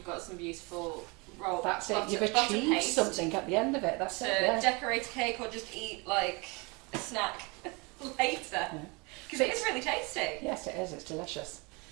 got some beautiful roll. That's it, you've achieved something at the end of it. That's it. To decorate a cake or just eat like a snack later. Because it is really tasty. Yes, it is, it's delicious.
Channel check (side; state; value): left; quieter; 28.4 dB